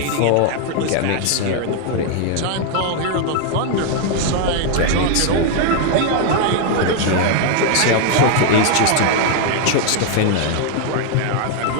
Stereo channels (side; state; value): both; different; correlation 0.00